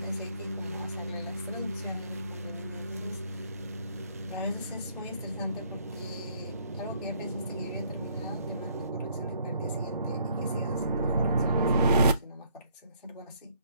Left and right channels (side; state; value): both; inverted; correlation -0.66